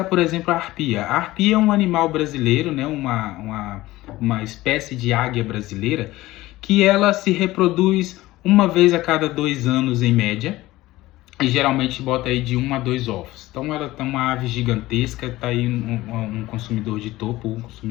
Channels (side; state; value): right; quieter; 17.7 dB